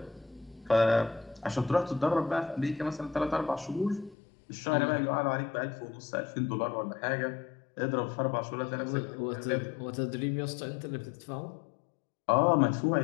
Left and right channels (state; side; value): drops out; right; at 4.2 s